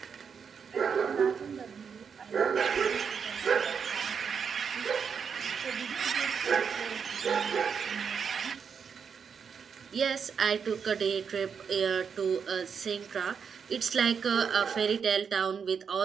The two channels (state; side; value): quieter; left; 6.5 dB